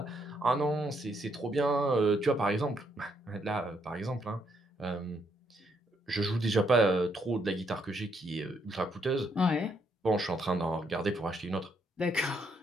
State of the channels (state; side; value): normal; both; correlation 0.74